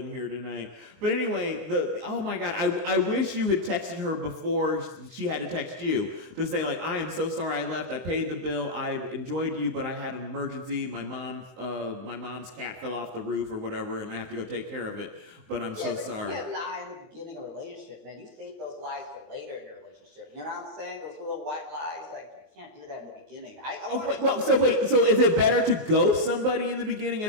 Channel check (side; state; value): left; late; 23 ms